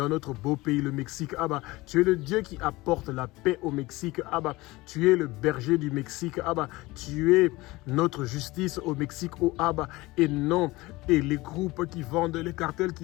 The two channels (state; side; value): quieter; right; 20.7 dB